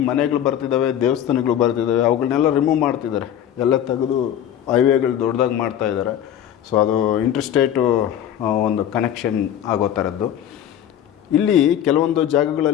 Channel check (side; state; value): right; quieter; 10.3 dB